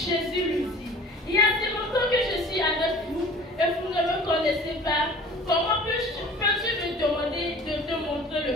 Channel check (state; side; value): normal; both; correlation 0.44